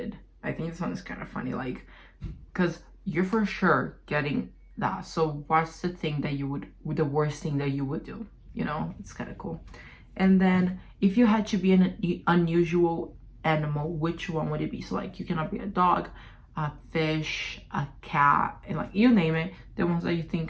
I think this one is kind of funny, because you're for sure getting that. So what's the thing that you would, the worst thing that you would do? It's kind of cool. And then if you had to be an unusual animal, which one would it be? So you cannot be a dog, a fish, a cat, and you name it, the ones that you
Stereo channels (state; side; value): identical; both; correlation 1.00